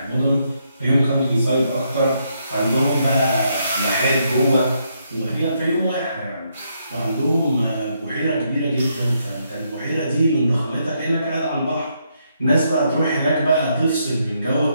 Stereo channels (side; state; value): both; inverted; correlation -0.76